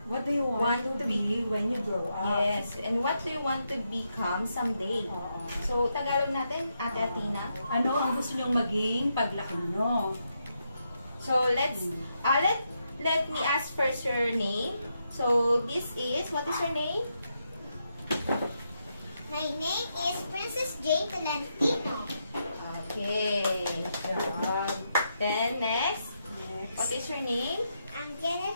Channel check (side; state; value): both; inverted; correlation -0.82